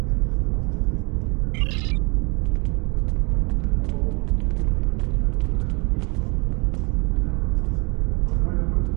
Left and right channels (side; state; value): left; quieter; 30.7 dB